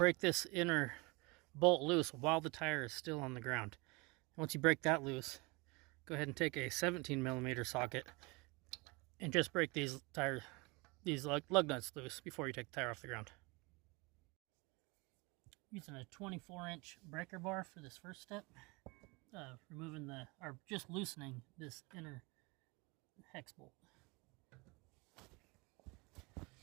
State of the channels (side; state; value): left; quieter; 26.9 dB